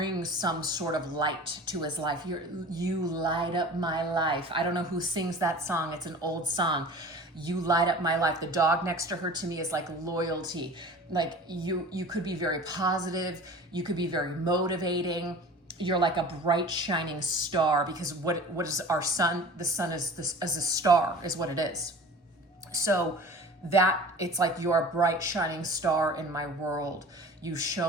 some sort of light to his life. You light up my life. I don't know who sings that song. It's an old song. You light up my life. The dog next to her to me is like loyalty. Like you could be very positive. You could be very motivating. You're like a bright shining star, because what is our sun? The sun is a star is what it is. So that it's like you're a bright shining star in my world. You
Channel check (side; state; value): both; normal; correlation 0.40